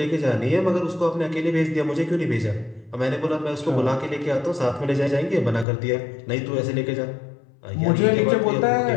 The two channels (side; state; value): right; drops out; at 5.7 s